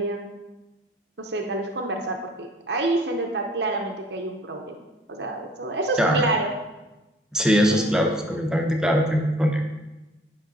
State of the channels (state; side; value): normal; both; correlation 0.53